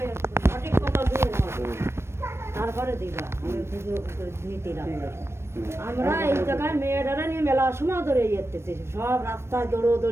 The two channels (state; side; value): late; left; 0.12 ms